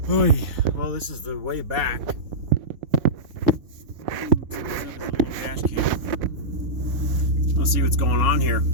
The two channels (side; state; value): left; late; 4.2 ms